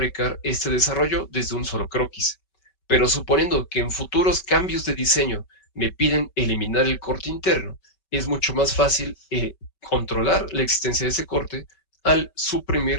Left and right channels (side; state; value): right; late; 5.2 ms